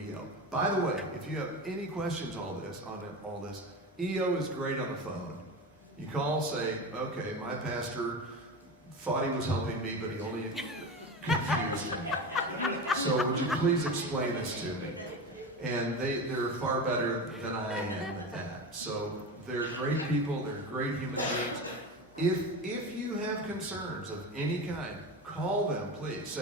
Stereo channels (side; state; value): both; normal; correlation 0.25